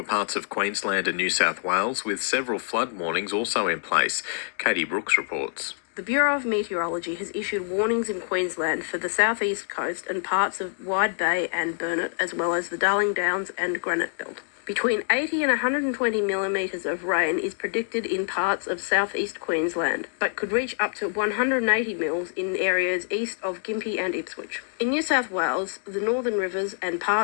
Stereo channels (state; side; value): silent; right; digital silence